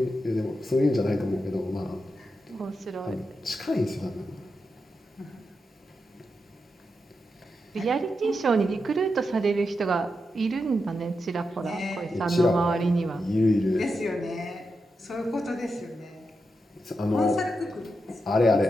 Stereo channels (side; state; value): both; normal; correlation 0.87